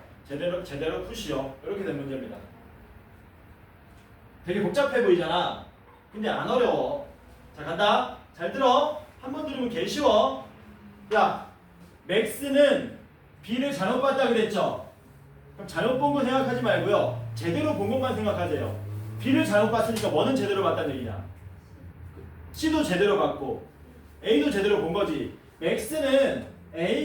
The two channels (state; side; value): identical; both; correlation 1.00